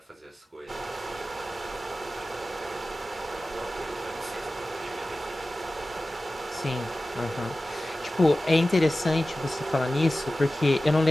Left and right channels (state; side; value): normal; both; correlation 0.96